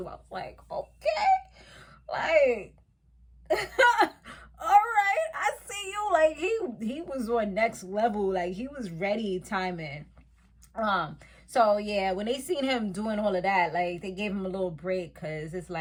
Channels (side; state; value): both; identical; correlation 1.00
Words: I was like, okay, like all right, I see you. Like, he was on next level. Like, he was ready timing. So yeah, when they seen him doing all of that, like they gave him a little break because it's